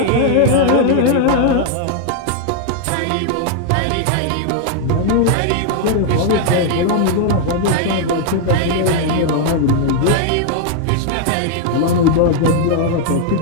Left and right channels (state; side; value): different; both; correlation 0.00